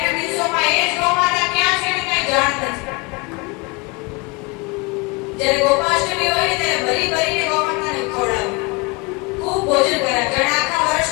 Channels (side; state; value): right; quieter; 27.7 dB